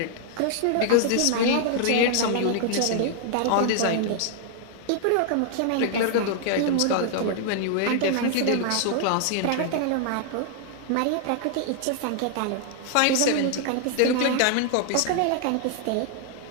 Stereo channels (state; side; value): different; both; correlation 0.00